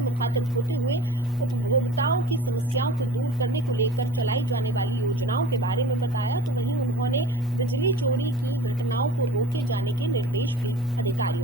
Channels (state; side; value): normal; both; correlation 0.39